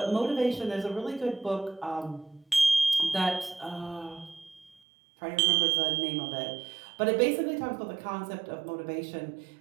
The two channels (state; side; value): drops out; left; at 4.8 s